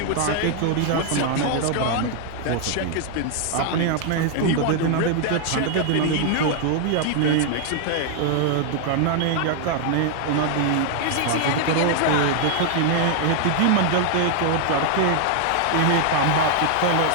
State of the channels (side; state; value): both; different; correlation 0.00